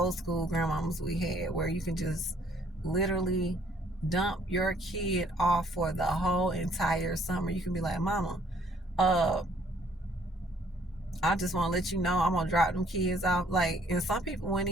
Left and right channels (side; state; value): both; normal; correlation 0.62